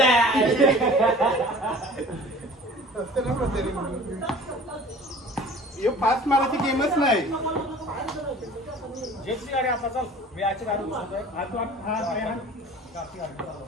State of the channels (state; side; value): normal; both; correlation 0.45